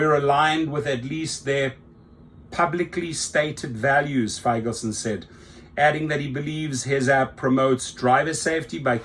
aligned with at least their publicly stated values, Feigelson said, adding that he believes his app promotes driver safety by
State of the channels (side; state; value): both; identical; correlation 1.00